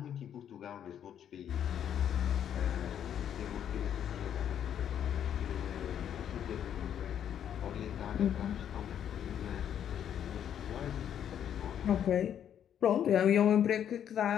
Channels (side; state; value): right; quieter; 9.5 dB